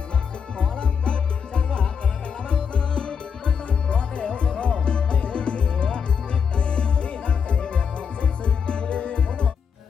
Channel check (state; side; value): quieter; right; 6.7 dB